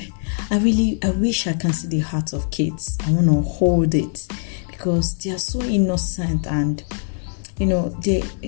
I wish I can see the heart of kids. I want to hold it because they are so innocent and, they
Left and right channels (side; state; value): right; silent; digital silence